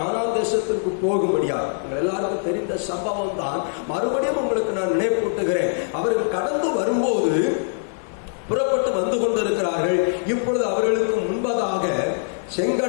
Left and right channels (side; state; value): right; silent; digital silence